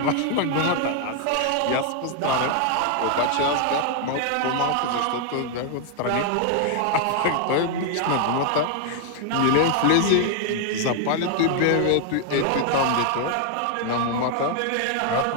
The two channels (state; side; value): different; both; correlation 0.00